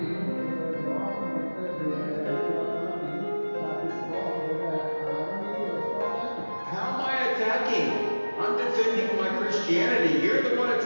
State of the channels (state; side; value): inverted; both; correlation -1.00